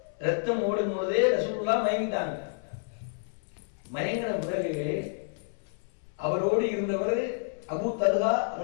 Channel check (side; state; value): right; silent; 58 dB below the other